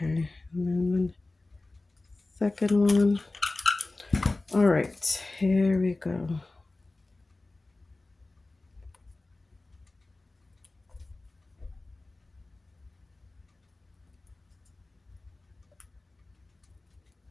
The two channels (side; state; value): right; quieter; 3.1 dB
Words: and then the second one. All right, here we go.